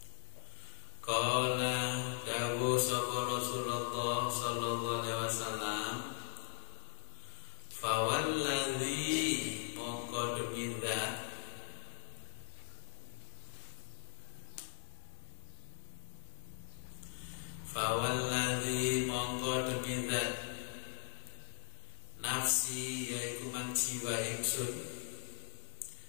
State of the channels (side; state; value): right; silent; 51 dB below the other